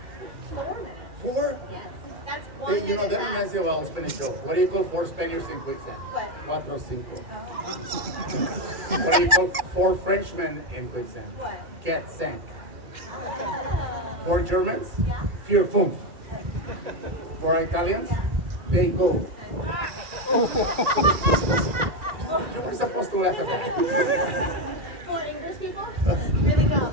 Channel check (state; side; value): late; left; 2.4 ms